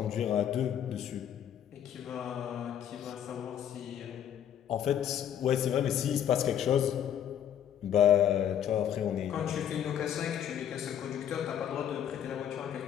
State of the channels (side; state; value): right; quieter; 9.8 dB